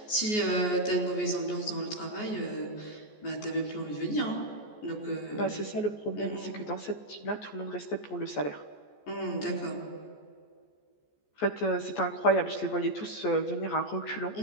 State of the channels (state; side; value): late; right; 14 ms